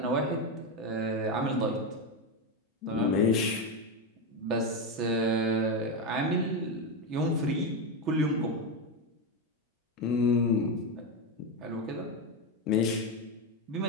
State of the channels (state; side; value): normal; both; correlation 0.10